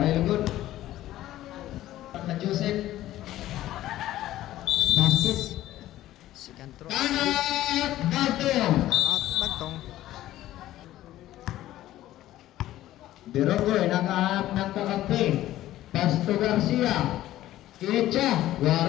lugod. Na Joseph. Basket. Second throw. Tangat Bagtong. Out Bagtong. Beronggoy nakahanap ng kakampi. Pasto Garcia. Kecha.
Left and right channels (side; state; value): right; quieter; 14.4 dB